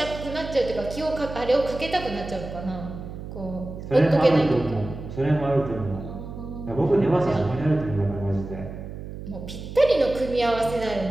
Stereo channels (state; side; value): noise; right; hum, 10 dB below the sound